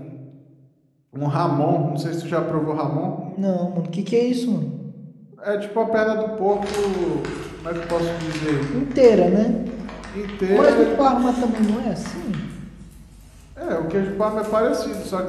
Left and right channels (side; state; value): both; identical; correlation 1.00